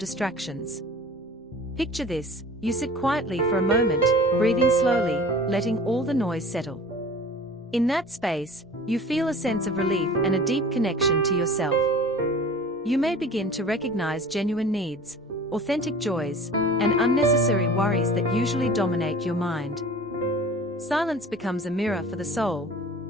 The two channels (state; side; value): normal; both; correlation 0.43